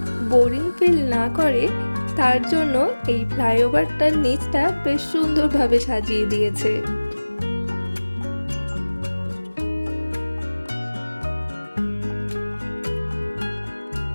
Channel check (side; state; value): both; inverted; correlation -1.00